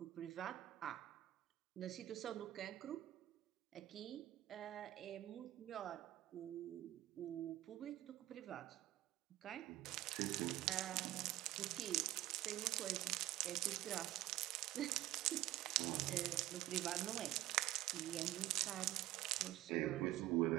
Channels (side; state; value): left; quieter; 15.0 dB